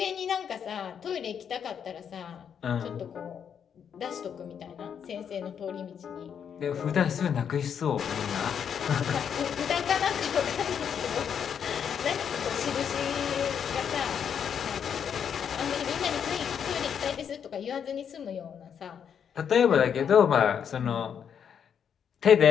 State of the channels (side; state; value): right; quieter; 7.8 dB